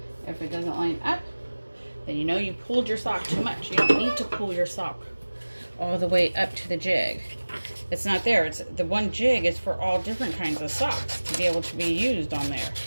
if it doesn't line up, then you know you pulled your sock too much. You don't need to pull your sock all the way up to the jig. It's not there. It's the one jig is for all different kinds of socks to be able to be used on there.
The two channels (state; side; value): inverted; both; correlation -1.00